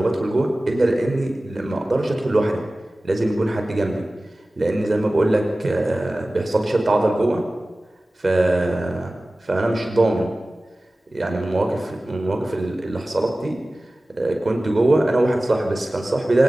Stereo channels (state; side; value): normal; both; correlation 0.97